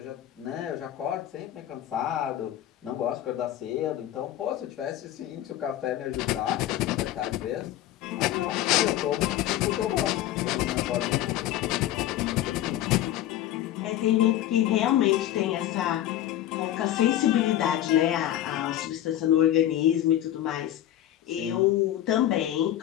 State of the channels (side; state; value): right; quieter; 12.7 dB